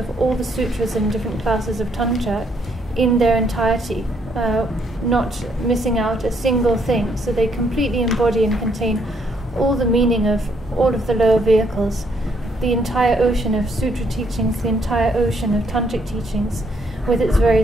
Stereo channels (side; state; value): both; normal; correlation 0.70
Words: all the sutras and different classes of Tantra in their entirety, not missing out a single thing. So they completely embody and contain all the meaning of all of the lower vehicles, the entire ocean of sutra teachings, the entire ocean of tantric teachings with its